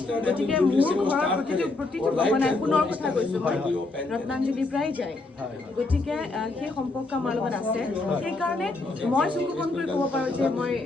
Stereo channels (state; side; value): quieter; right; 3.2 dB